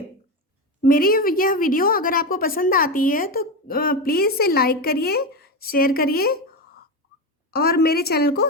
मेरी यह वीडियो अगर आपको पसंद आती है तो प्लीज़ इसे लाइक करिए, शेयर करिए और मेरे चैनल को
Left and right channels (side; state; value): both; normal; correlation 0.15